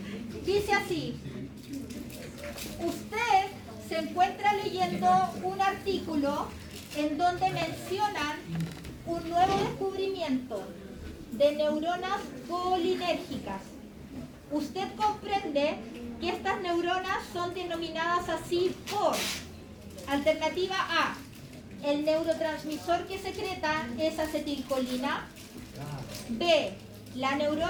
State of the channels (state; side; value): identical; both; correlation 1.00